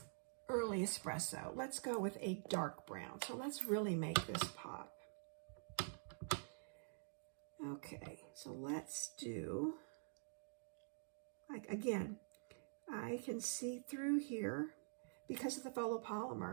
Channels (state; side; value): silent; left; digital silence